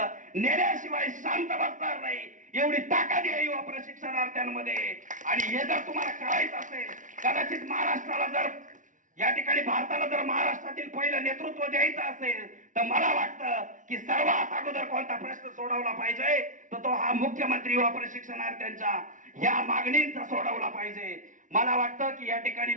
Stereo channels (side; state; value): left; late; 0.37 ms